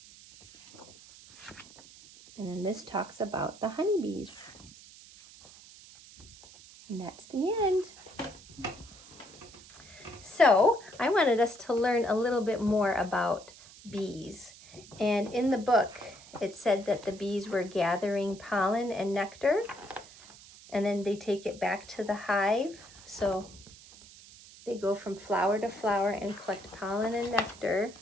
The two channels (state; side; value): noise; right; hiss, 20 dB below the sound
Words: And then this talks about the honeybees. And that's the end. So I wanted us to learn a little bit more about bees. And in the book, it said that the bees were gathering pollen and nectar, and then they take it back to the hive. So they go from flower to flower and collect pollen and nectar.